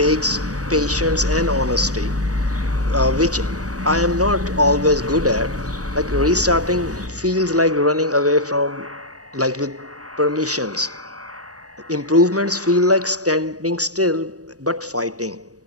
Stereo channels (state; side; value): late; left; 0.66 ms